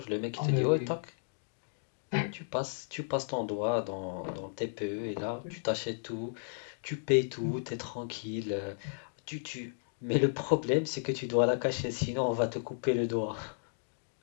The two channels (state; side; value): silent; right; digital silence